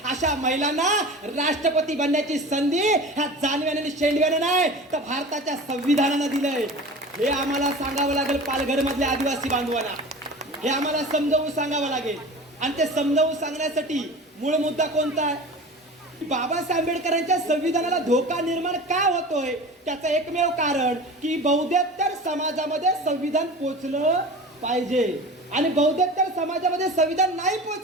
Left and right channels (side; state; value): both; normal; correlation 0.35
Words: अशा महिलांना राष्ट्रपती बनण्याची संधी ह्या जानव्याने आणि शेंडव्याने नाही तर भारताच्या संविधानानं दिलंय. हे आम्हाला सांगावं लागेल पालघर मधल्या आदिवासी बांधवांना, हे आम्हाला समजावून सांगावं लागेल. आणि ते समजावून सांगण्यासाठी मूळ मुद्दा कोणता आहे? बाबासाहेब आंबेडकरांच्या संविधानाला धोका निर्माण का होतोय? त्याचं एकमेव कारण की बौद्धेतर समाजामध्ये संविधान पोचलं पाहिजे, आणि बौद्धेतर समाजामध्ये संविधान नाही